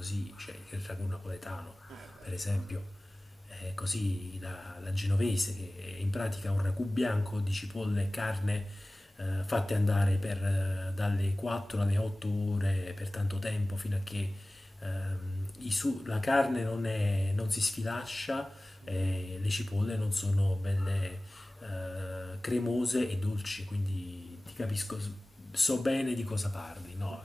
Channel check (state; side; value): normal; both; correlation 0.98